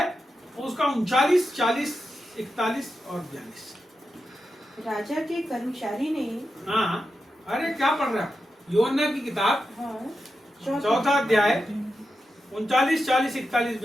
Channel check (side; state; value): both; normal; correlation 0.89